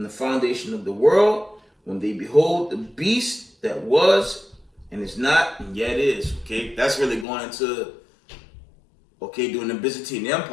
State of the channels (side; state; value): right; drops out; at 7.2 s